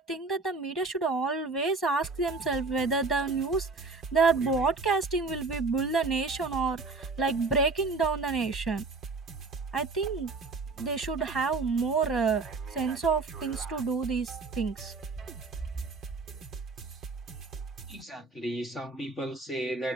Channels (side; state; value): left; quieter; 3.9 dB